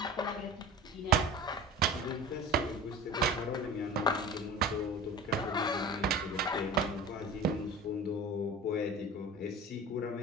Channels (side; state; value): both; normal; correlation 0.36